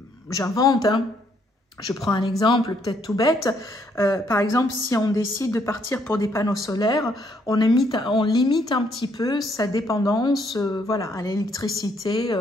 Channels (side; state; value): both; normal; correlation 0.70